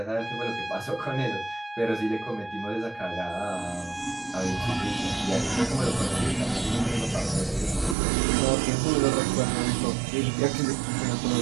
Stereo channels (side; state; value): left; drops out; at 8.0 s